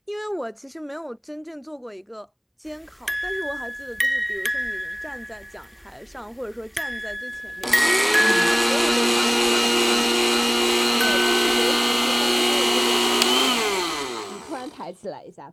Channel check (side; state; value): both; identical; correlation 1.00